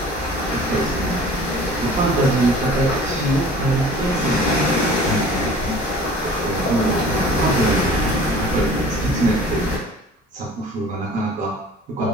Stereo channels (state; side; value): normal; both; correlation 0.46